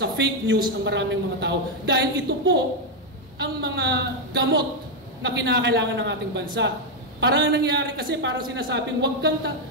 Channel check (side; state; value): both; normal; correlation 0.02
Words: fake news ang maraming mga tao. Dahil ito po ang mga gamot na kinakailangan ng ating bansa. Parang nangyari kasi, parang sinasabing wag kang